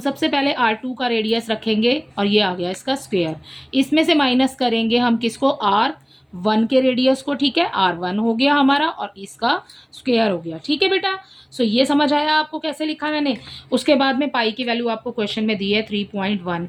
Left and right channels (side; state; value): both; identical; correlation 1.00